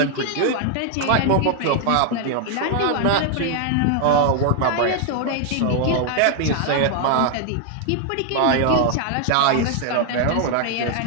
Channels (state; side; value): different; both; correlation 0.00